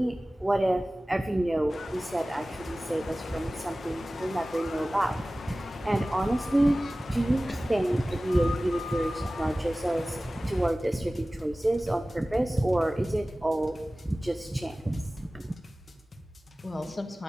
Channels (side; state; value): both; normal; correlation 0.97